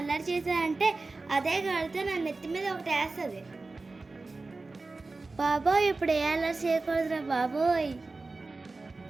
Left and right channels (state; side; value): quieter; left; 3.6 dB